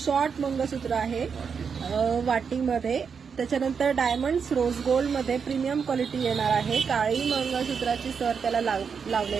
मंगळसूत्र आहे वाटीमध्ये। त्याच्यानंतर डायमंड्स रोज गोल्ड मध्ये प्रीमियम क्वालिटी येणार आहे। काळी मंगळसूत्राची सर त्याला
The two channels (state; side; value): quieter; left; 6.2 dB